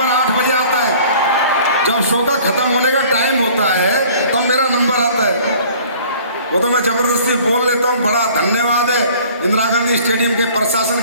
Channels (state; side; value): inverted; both; correlation -0.51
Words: 8 बजे आता है, जब शो का खत्म होने का टाइम होता है तब मेरा नंबर आता है। वो तो मैं जबरदस्ती बोल लेता हूँ। बड़ा धन्यवाद है इंदिरा गांधी स्टेडियम के प्रशासन